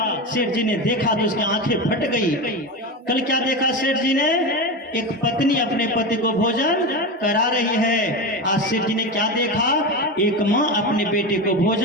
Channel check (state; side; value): normal; both; correlation 0.20